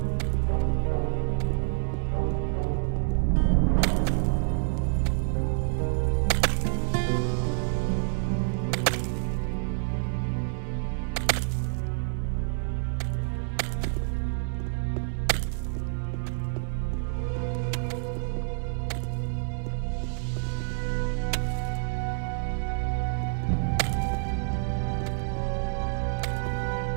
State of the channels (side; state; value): left; silent; 59 dB below the other